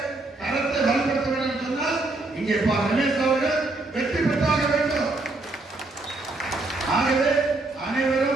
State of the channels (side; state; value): left; quieter; 3.1 dB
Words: கரத்தை இங்கே ரமேஷ் அவர்கள் வெற்றி பெற்றாக வேண்டும். ஆகவே